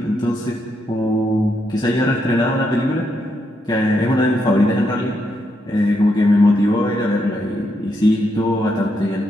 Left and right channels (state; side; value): normal; both; correlation 0.79